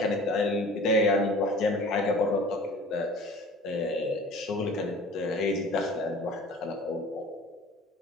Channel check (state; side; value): normal; both; correlation 0.44